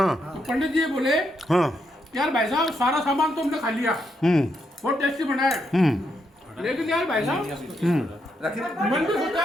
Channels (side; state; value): both; normal; correlation 0.80